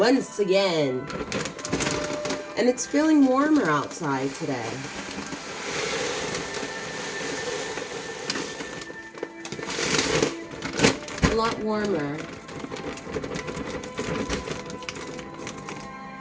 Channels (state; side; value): identical; both; correlation 1.00